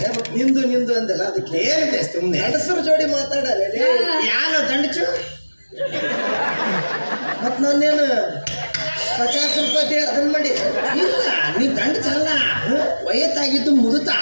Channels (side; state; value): both; inverted; correlation -1.00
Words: ನಿಂದು ನಿಂದು ಅಂದಲ್ಲ ಅದಕ್ಕೆ ಹೇಳಿದೆ ಸುಮ್ಮನೆ ಗಂಡಸರು ಜೋಡಿ ಮಾತಾಡಲ್ಲ ಯಾರು ದಂಡಚು ಮತ್ ನಾನೇನು 50 ರೂಪಾಯಿ ಅದನ್ನ ಮಾಡಿ ಇಲ್ಲ ನೀ ದಂಡ ಚಲ್ಲ ವಯಸ್ಸಾಗಿದ್ದು ಮುದುತಾ